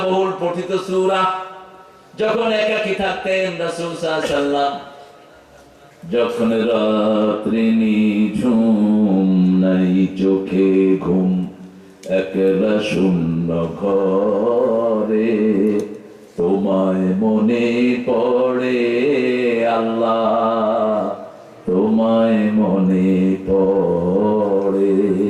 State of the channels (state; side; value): identical; both; correlation 1.00